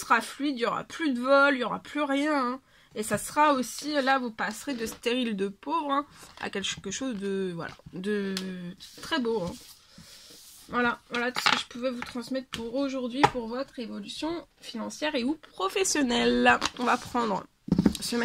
fluide. Il n'y aura plus de vol, il n'y aura plus rien, hein. Et ça sera aussi, là, vous passerez de stérile de pauvre hein, à quelque chose de, voilà, de très beau. Hein. Voilà tout ce que je pouvais vous transmettre pour aujourd'hui, pour votre évolution financière et ou professionnelle. On va prendre ce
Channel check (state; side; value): identical; both; correlation 1.00